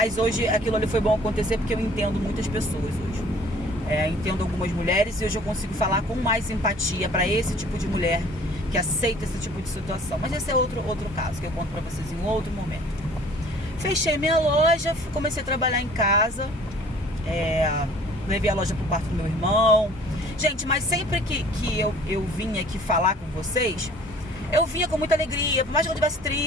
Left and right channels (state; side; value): normal; both; correlation 0.52